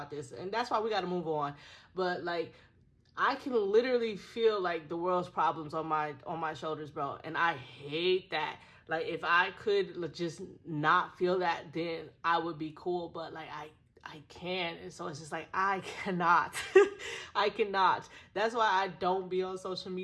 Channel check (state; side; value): identical; both; correlation 1.00